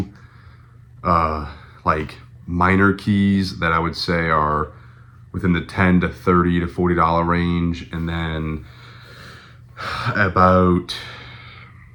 like minor keys that I would say are within the $10 to $30 to $40 range, and then about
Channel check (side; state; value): both; identical; correlation 1.00